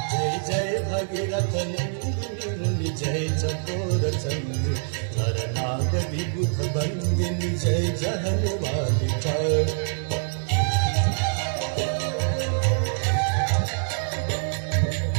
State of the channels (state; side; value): silent; left; digital silence